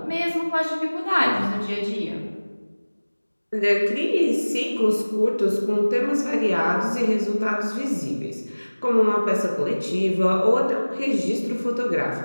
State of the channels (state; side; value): inverted; both; correlation -1.00